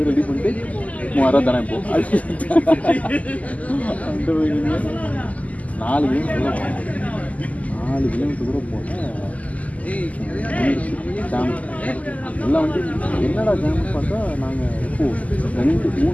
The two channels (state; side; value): late; right; 0.073 ms